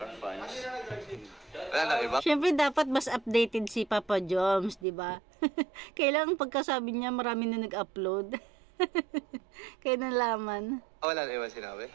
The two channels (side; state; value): left; drops out; at 4.9 s